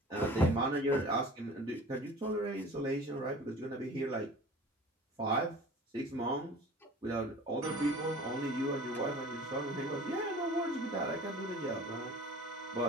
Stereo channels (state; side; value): normal; both; correlation 0.43